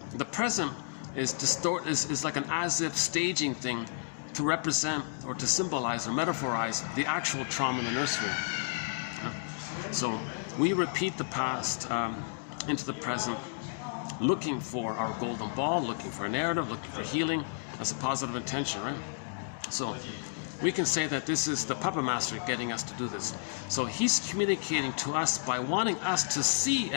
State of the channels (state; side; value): silent; right; digital silence